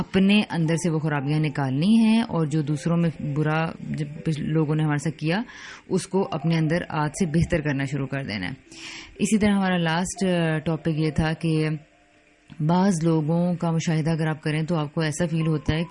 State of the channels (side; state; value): both; identical; correlation 1.00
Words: اندر سے وہ خرابیاں نکالنی ہیں اور جو دوسروں میں برا جب لوگوں نے ہمارے ساتھ کیا اس کو اپنے اندر آج سے بہتر کرنا شروع کر دینا ہے. اسی طرح ہمارا لاسٹ ٹاپک یہ تھا کہ بعض لوگوں کا مشاہدہ اگر آپ کریں تو آپ کو ایسا فیل ہوتا ہے